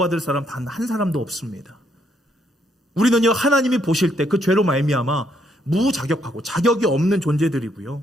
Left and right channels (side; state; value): both; normal; correlation 0.73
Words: 사람 단 한 사람도 없습니다. 우리는요, 하나님이 보실 때 그 죄로 말미암아 무자격하고 자격이 없는 존재들이고요,